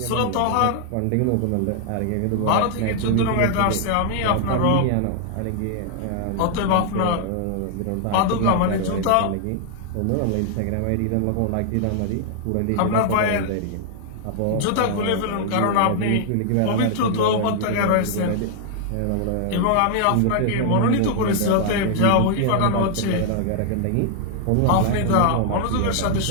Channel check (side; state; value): both; different; correlation 0.00